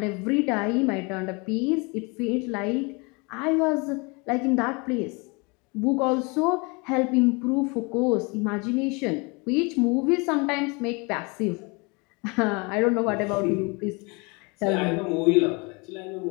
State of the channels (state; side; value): quieter; right; 29.2 dB